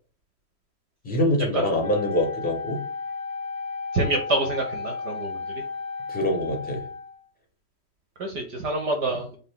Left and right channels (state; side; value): late; left; 3.1 ms